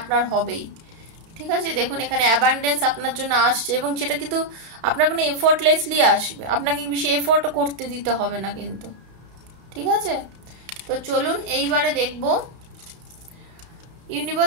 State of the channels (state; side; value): late; left; 31 ms